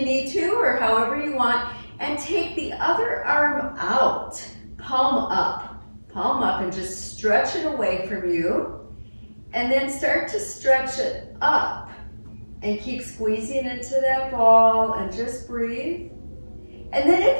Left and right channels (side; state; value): both; inverted; correlation -1.00